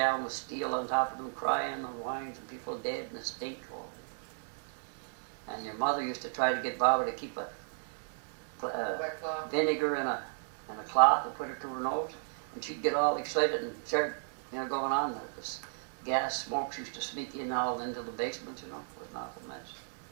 down with steel on top of them, crying and whining, and people dead in the stink. And your mother used to try to get Baba to keep a vinegar in a cloth and put it to her nose. And she'd get all excited and start, going on. This gas smokes used to sneak in all into the basement, It was not a mess.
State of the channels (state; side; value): silent; left; digital silence